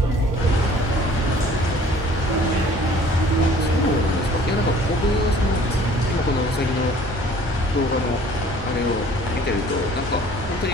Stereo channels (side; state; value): both; normal; correlation 0.52